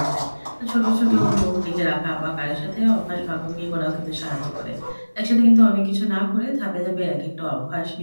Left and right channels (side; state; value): both; inverted; correlation -1.00